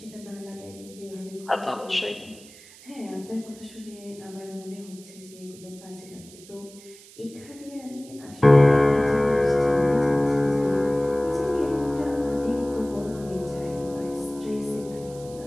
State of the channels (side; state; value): right; noise; hiss, 21 dB below the sound